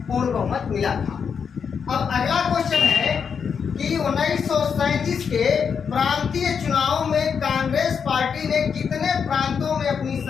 पूर्ण बहुमत मिला था। अब अगला क्वेश्चन है कि 1937 के प्रांतीय चुनाव में कांग्रेस पार्टी ने कितने प्रांतों में अपनी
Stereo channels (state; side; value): quieter; right; 6.6 dB